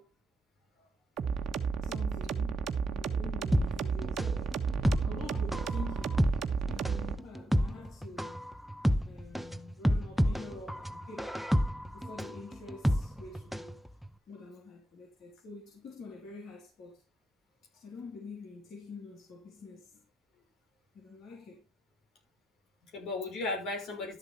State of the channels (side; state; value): both; normal; correlation 0.86